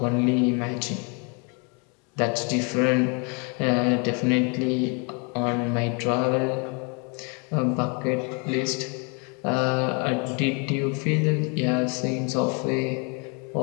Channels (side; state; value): right; quieter; 34.2 dB